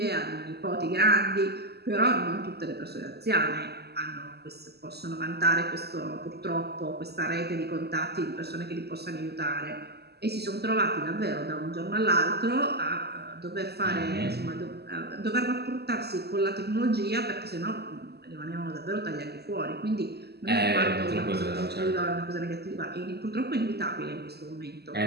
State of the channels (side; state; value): left; late; 0.47 ms